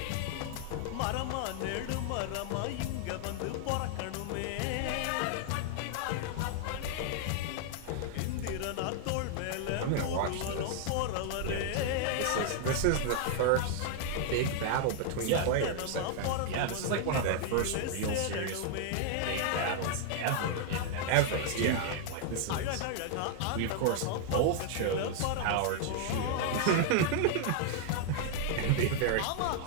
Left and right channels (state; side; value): different; both; correlation 0.00